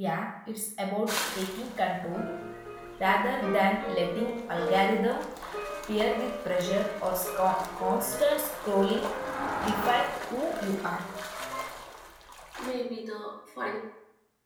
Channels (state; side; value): identical; both; correlation 1.00